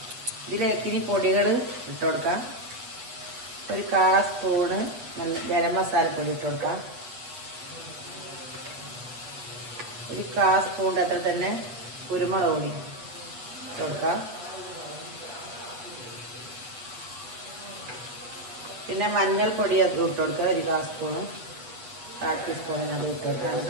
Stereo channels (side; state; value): left; late; 8.6 ms